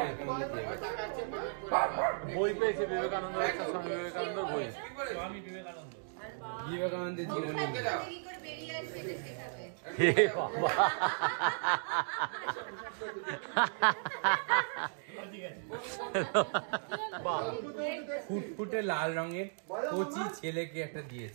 বই পেয়েছে বিবেকানন্দ, একটা স্বামী বিবেকানন্দ বই। বিবেকানন্দের জীবনী। হে বাবা, ফুটফুটে লাল রঙের কচি ছেলেকে একটা দিয়েছে।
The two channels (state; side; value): silent; left; digital silence